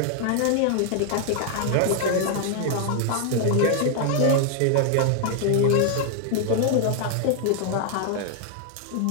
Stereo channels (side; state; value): both; different; correlation 0.00